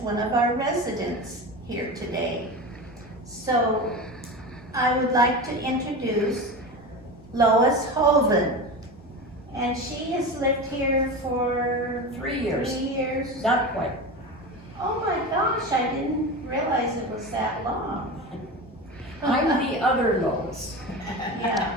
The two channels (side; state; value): both; normal; correlation 0.26